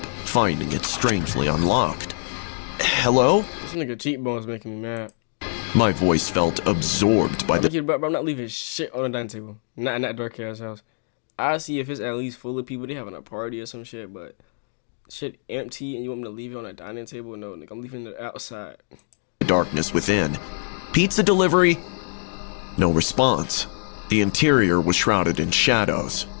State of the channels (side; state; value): right; silent; digital silence